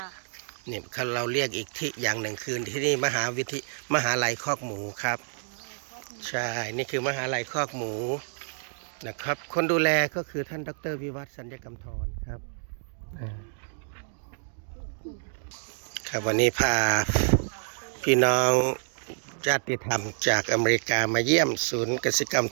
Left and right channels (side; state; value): left; silent; digital silence